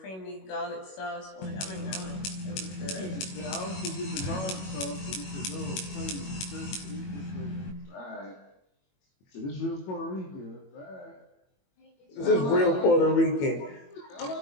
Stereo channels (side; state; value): right; late; 21 ms